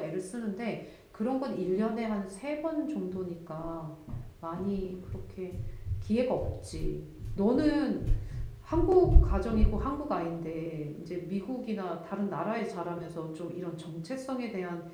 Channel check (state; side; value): identical; both; correlation 1.00